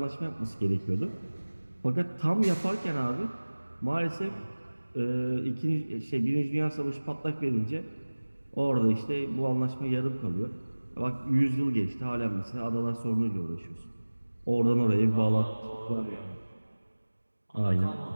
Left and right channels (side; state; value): both; inverted; correlation -1.00